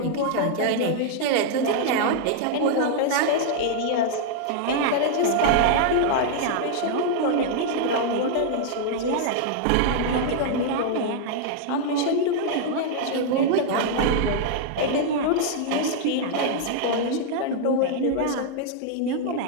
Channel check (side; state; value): both; different; correlation -0.01